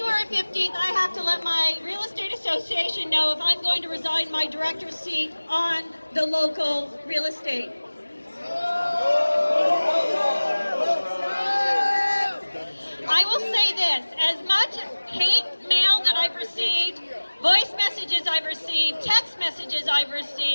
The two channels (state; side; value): inverted; both; correlation -1.00